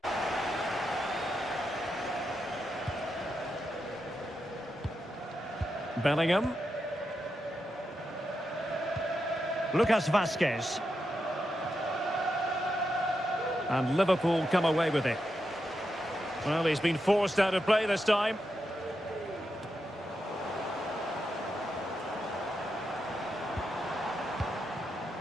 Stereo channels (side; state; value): both; normal; correlation 0.86